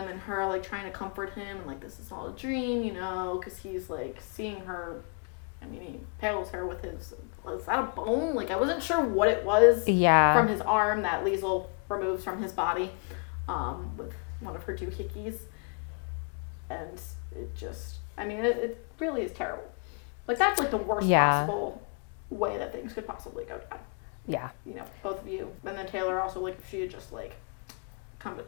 and her like trying to comfort him and like this is all a dream, because he's like seeing her. I mean, he impales her with is that a bone? Like I wasn't sure what it was from his arm that Liesl removes from his body with one of her doohickeys. And it just, it really is terrible. Like that's like the worst possible way that things could possibly go down. Yeah. Both of you. And then Taylor also, like if she had just like come to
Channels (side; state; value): right; quieter; 37.9 dB